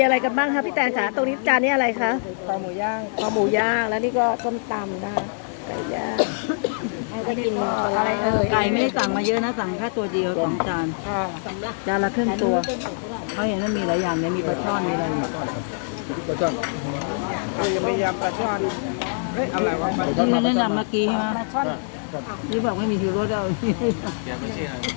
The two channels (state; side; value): silent; right; 61 dB below the other